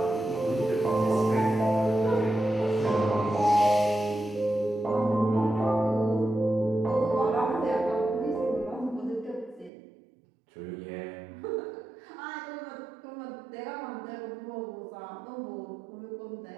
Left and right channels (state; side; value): drops out; left; at 9.7 s